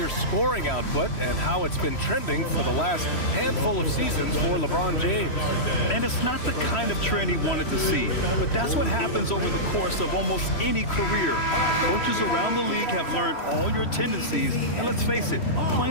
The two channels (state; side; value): late; right; 3.1 ms